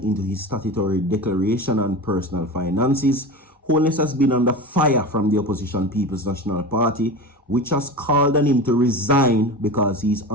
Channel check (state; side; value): normal; both; correlation 0.28